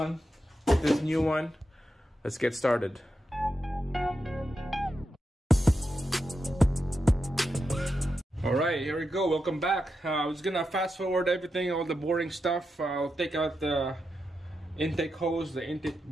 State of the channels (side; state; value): both; normal; correlation 0.87